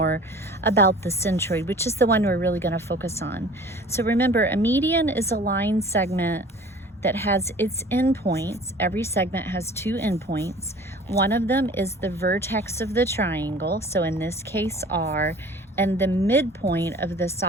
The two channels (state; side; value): normal; both; correlation 0.45